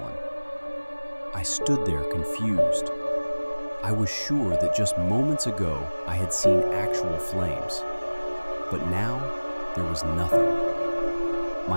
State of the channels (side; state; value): both; inverted; correlation -1.00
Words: I stood there confused. I was sure that just moments ago I had seen actual flames, but now there was nothing.